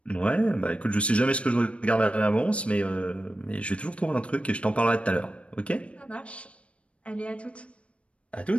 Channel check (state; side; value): late; right; 0.061 ms